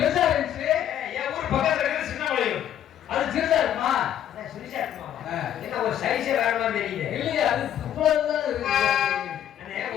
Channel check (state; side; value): quieter; right; 10.6 dB